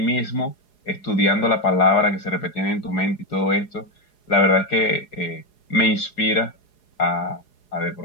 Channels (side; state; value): right; late; 4.8 ms